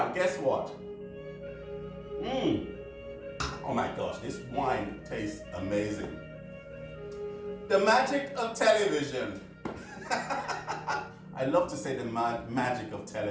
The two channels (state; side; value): identical; both; correlation 1.00